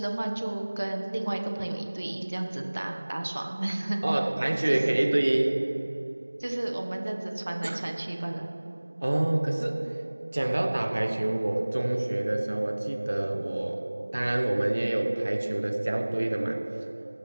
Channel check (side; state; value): both; inverted; correlation -1.00